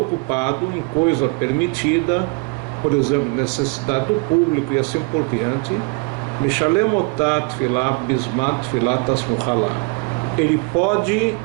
ocupado em coisa permitida, por exemplo, necessidade do público e assim por diante, Mishalem otat tefilá bismat tefilá tasmuchalá. Ele pode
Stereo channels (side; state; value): left; quieter; 30.4 dB